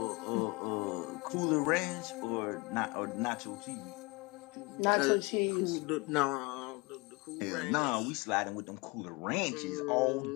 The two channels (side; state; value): right; quieter; 26.9 dB